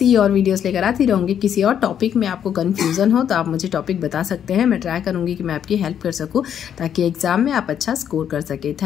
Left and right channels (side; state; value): right; quieter; 9.1 dB